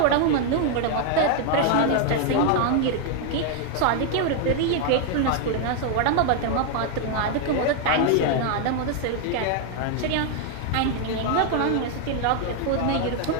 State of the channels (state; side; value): different; both; correlation 0.00